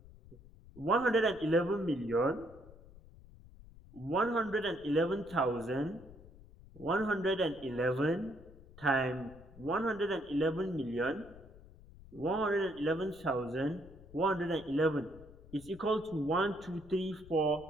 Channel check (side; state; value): left; noise; rumble, 20 dB below the sound